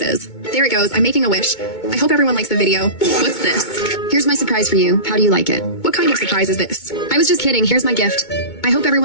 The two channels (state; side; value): late; right; 2.2 ms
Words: is. There it goes. I'm making a wish. I hope everyone likes the video. What's this? Here's my surprise for you. How do you like it? What kind of surprise is this? I was just kidding. Here's my gift. I hope